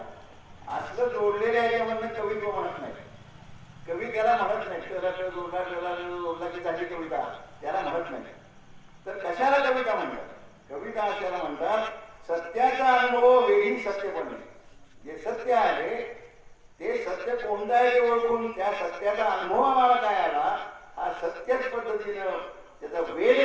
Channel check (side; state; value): both; identical; correlation 1.00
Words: असलं जोडलेल्या याच्यामधनं कवित्व म्हणत नाही. कवी त्याला म्हणत नाही. जोडला की झाली कविता त्याला म्हणत नाही. तर कशाला कविता म्हणतात. कविता अशाला म्हणतात सत्याचा अनुभव वेगळी सत्य बनणे. जे सत्य आहे ते सत्य कोणतं आहे ते ओळखून त्या सत्याचा अनुभव आम्हाला काय आला हा सत्यच पद्धतीनं त्याचा